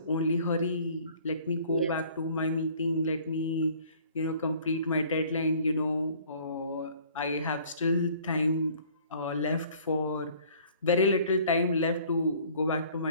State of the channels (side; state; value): both; inverted; correlation -0.54